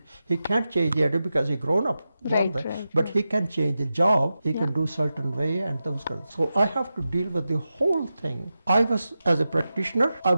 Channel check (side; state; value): both; inverted; correlation -0.92